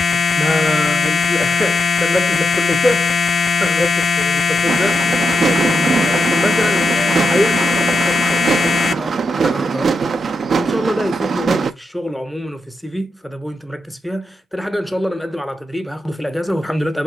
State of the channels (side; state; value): both; normal; correlation 0.84